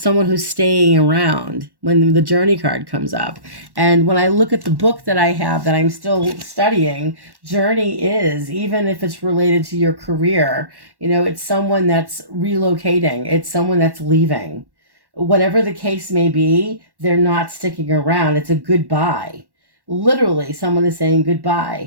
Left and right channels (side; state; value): left; late; 1.1 ms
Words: who's staying around when the journey card comes up. And when I look at the book that I have that I'm still studying, journey is, even if it's related to your career, it's someone that's relocating, it's someone that's leaving. Whatever the case may be, they're not sticking around. It's a goodbye. Literally, someone is saying